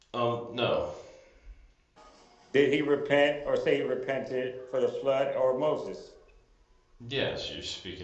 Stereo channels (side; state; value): both; identical; correlation 1.00